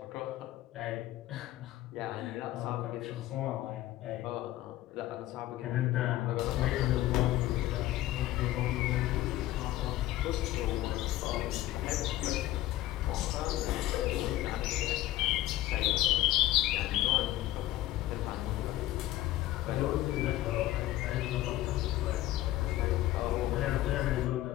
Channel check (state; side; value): quieter; right; 15.3 dB